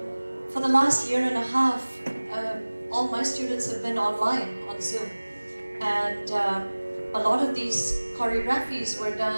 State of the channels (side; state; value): both; inverted; correlation -1.00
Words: For the last year and a half, all my students have been online on Zoom. And a lot of these choreographies were